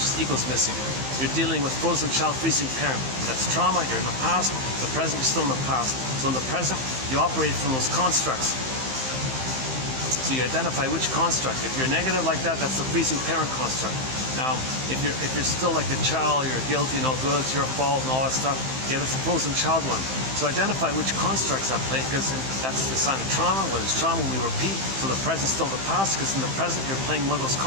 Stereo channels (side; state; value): left; late; 15 ms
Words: ego is missing. You're dealing with frozen child, freezing parent. That's trauma. You're in the past. The present, you're still in the past. So in the present, you operate from those constructs. So you identify which construct. If you're negative like that, that's the freezing parent construct. Now, if you're still like the child, you're guilty, no good, it's your fault, and all that stuff, yeah, that's the frozen child one. So identify which constructs at play, because that's the sign of trauma. When it's trauma, we repeat. So the present's still the past, because in the present, you're playing one of those